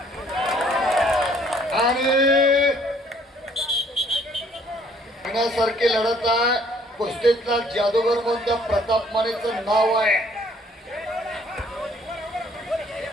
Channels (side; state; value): both; normal; correlation 0.61